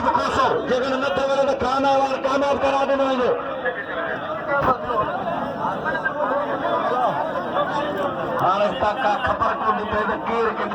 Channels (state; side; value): identical; both; correlation 1.00